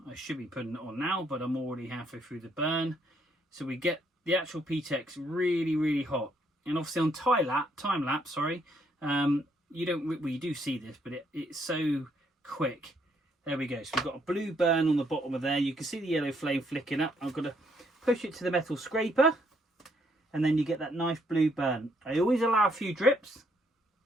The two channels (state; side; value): normal; both; correlation 0.71